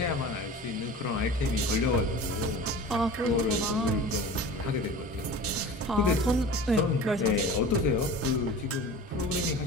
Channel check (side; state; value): both; normal; correlation 0.37